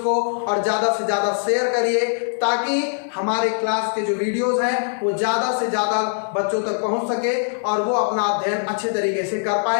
और ज़्यादा से ज़्यादा शेयर करिए, ताकि हमारे क्लास के जो वीडियोस हैं वो ज़्यादा से ज़्यादा बच्चों तक पहुंच सके और वो अपना अध्ययन अच्छे तरीके से कर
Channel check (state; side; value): silent; right; 64 dB below the other